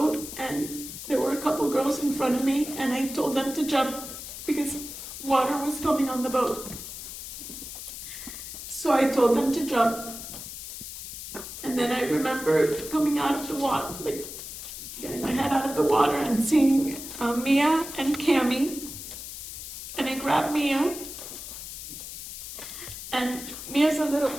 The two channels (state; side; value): noise; left; hiss, 10 dB below the sound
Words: and there were a couple girls in front of me, and I told them to jump because water was coming on the boat. So I told them to jump. And then I remember coming out of the water, like getting my head out of the water and seeing Mia and Cammie. And I grabbed Mia. And Mia's